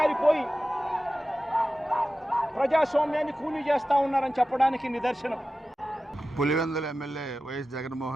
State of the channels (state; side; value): normal; both; correlation 0.94